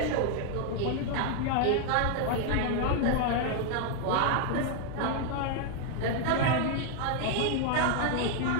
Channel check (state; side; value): different; both; correlation 0.00